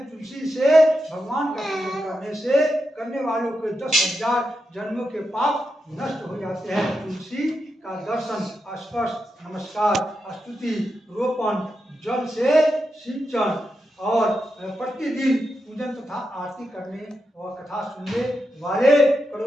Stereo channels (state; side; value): normal; both; correlation 0.87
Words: तुलसी से भगवान का पूजन करने वालों के 10,000 जन्मों के पाप नष्ट हो जाते हैं। तुलसी का दर्शन, स्पर्श, नमस्कार, स्तुति, रोपण, जल से सिंचन और प्रतिदिन पूजन तथा आरती करने और कथा सुनने वाले